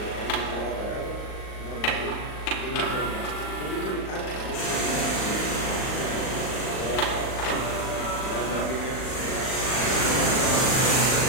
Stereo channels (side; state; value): right; late; 39 ms